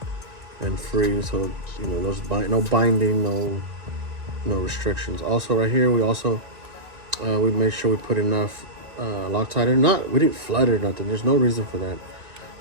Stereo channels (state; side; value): late; left; 1.9 ms